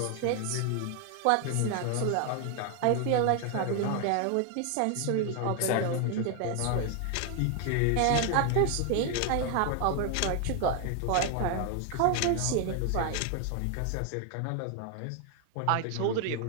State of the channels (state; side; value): different; both; correlation 0.01